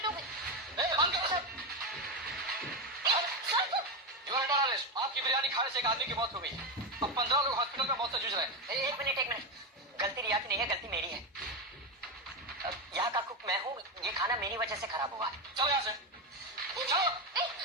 हो गई। बंद करो सब। Sir You are under arrest. आपकी बिरयानी खाने से एक आदमी की मौत हो गई। अब 15 लोग हॉस्पिटल में मौत से जूझ रहे हैं। एक मिनट, गलती रिया की नहीं है, गलती मेरी है। यहाँ का कुक मैं हूँ, ये खाना मेरी वजह से खराब हुआ। चलो यहाँ से। चलो।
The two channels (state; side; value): normal; both; correlation 0.12